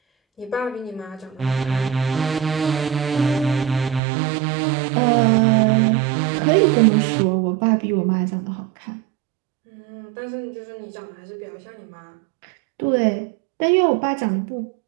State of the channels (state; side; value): drops out; left; at 4.0 s